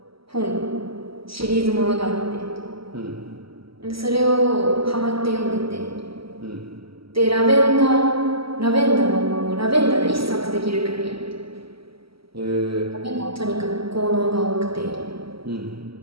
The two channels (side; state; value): left; late; 0.75 ms